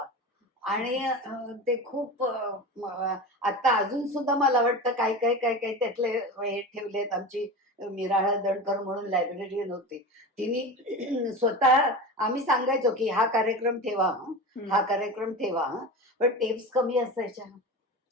आणि ते खूप आता अजून सुद्धा मला वाटतं काय काय काय काय त्यातले हे ठेवलेत. आमची मिराळा दणकर म्हणून लायब्ररीयन होती, तिने स्वतः, आम्ही सांगायचो की हा कार्यक्रम ठेवा हं, हा कार्यक्रम ठेवा हं. पण टेप्स कमी असायच्या,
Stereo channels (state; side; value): normal; both; correlation 0.28